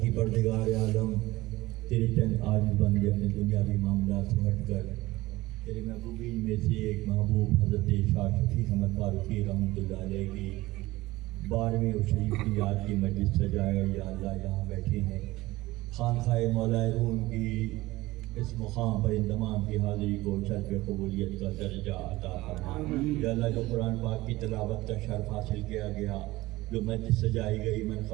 پردگار عالم تیرے چند عاجز بندے اپنے دنیاوی معاملات سے ہٹ کر تیرے محبوبین میں سے ایک محبوب حضرت شاہ شفیق احمد فاروقی رحمۃ اللہ علیہ کی 12ویں اور شریف کی یاد کی مجلس سجائے یا اللہ یہاں بیٹھے ہیں خانقاہ مولا روم کی اس مقام پر اندمام کی حاضری کو شرف قبولیت کا درجہ عطا فرما یا اللہ جو قرآن پاک کی تلاوت کا شرف حاصل کیا گیا جو مجلس سجائی گئی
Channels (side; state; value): left; quieter; 18.8 dB